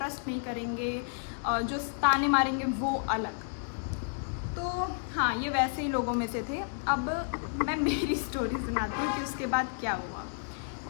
नहीं करेंगे, जो ताने मारेंगे वो अलग। तो हाँ, ये वैसे ही लोगों में से थे। अब मैं मेरी स्टोरी सुनाती हूँ कि उसके बाद क्या हुआ।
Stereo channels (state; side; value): silent; right; digital silence